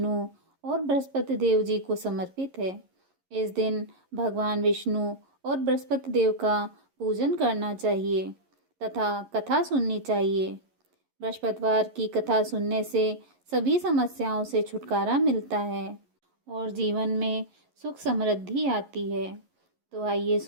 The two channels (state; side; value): late; left; 11 ms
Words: और बृहस्पति देव जी को समर्पित है। इस दिन भगवान विष्णु और बृहस्पति देव का पूजन करना चाहिए तथा कथा सुननी चाहिए। बृहस्पतिवार की कथा सुनने से सभी समस्याओं से छुटकारा मिलता है और जीवन में सुख समृद्धि आती है। तो आइए